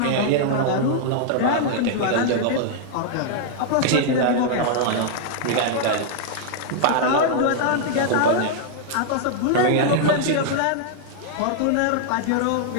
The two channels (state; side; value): different; both; correlation -0.01